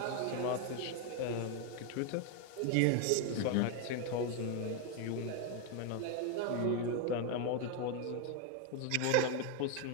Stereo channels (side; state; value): both; different; correlation 0.01